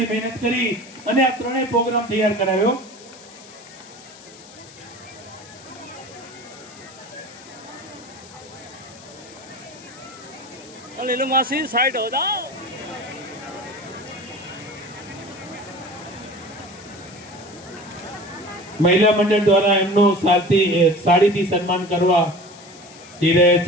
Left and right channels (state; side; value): noise; left; hiss, 20 dB below the sound